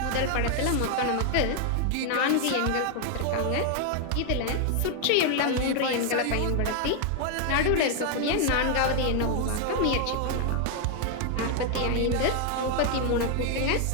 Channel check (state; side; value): different; both; correlation 0.00